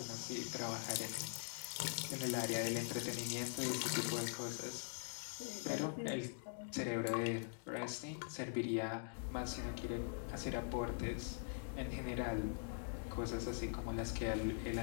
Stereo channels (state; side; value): silent; right; digital silence